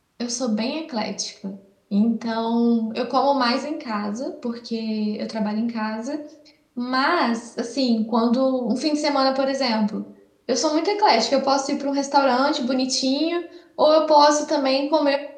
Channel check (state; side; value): identical; both; correlation 1.00